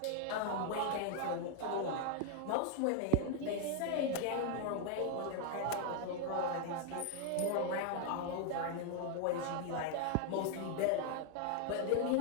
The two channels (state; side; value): different; both; correlation 0.00